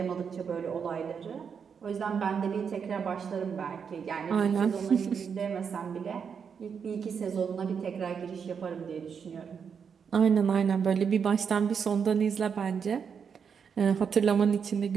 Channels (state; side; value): quieter; left; 6.7 dB